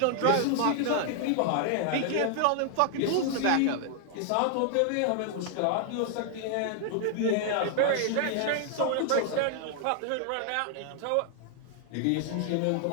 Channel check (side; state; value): both; different; correlation 0.00